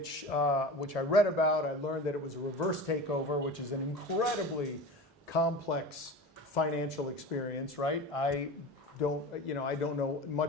I read about. I learned that it was a reverse takeover, which is an incredibly complex financial experience, right? I don't know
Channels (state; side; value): normal; both; correlation 0.31